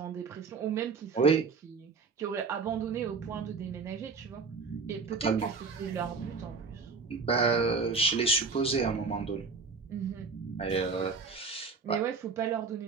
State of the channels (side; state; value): left; quieter; 4.7 dB